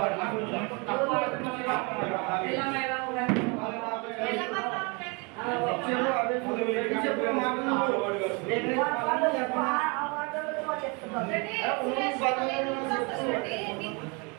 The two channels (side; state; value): left; quieter; 30.9 dB